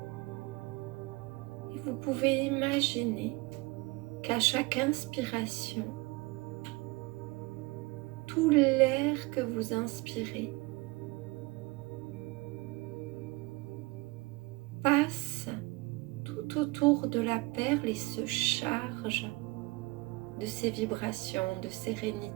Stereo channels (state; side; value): quieter; left; 24.6 dB